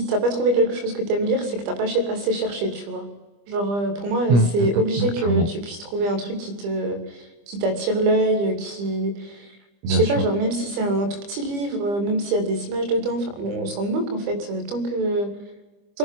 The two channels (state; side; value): late; left; 25 ms